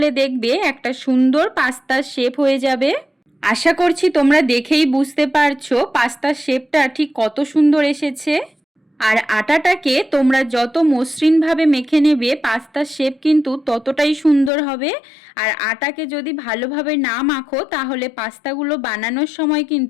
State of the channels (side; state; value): right; drops out; at 14.5 s